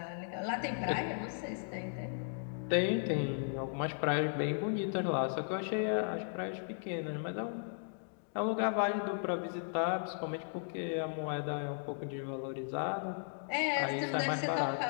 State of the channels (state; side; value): silent; right; digital silence